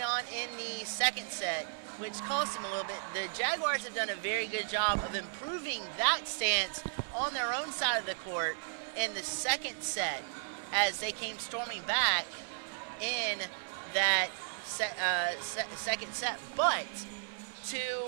in the second set, which cost them a little bit. The Jaguars have done a very good job of improving that stance on their own side of the court in the second set as they came storming back in that second set. But to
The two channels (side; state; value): left; silent; 55 dB below the other